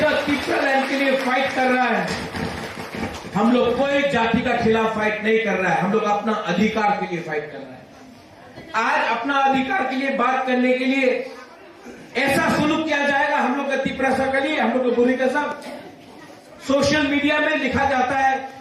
त्रिपुरा लैंड के लिए फाइट कर रहा है। हम लोग कोई जाति का खिलाफ फाइट नहीं कर रहा है, हम लोग अपना अधिकार के लिए फाइट कर रहा है। आज अपना अधिकार के लिए बात करने के लिए ऐसा सुलूक किया जाएगा हम लोग का तिप्रसा के लिए, हम लोग को बुरी का सब सोशल मीडिया में लिखा जाता है,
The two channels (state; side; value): identical; both; correlation 1.00